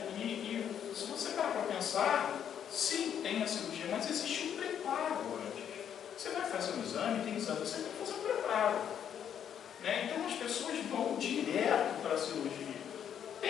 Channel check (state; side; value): quieter; right; 9.0 dB